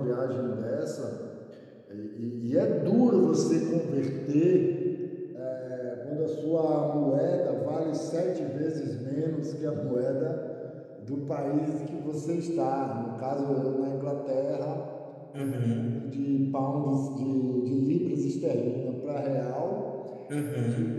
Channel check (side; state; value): both; identical; correlation 1.00